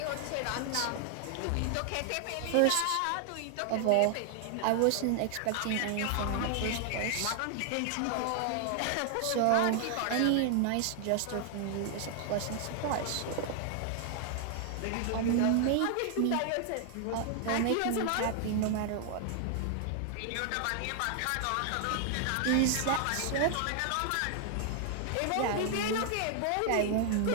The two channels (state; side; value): different; both; correlation 0.00